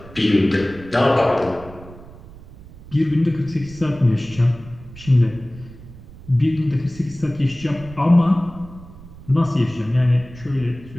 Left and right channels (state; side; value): noise; right; rumble, 18 dB below the sound